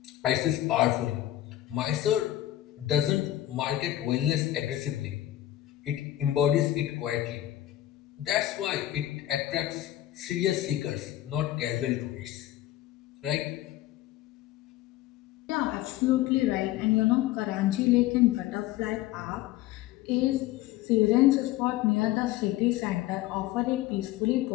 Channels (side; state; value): right; quieter; 14.3 dB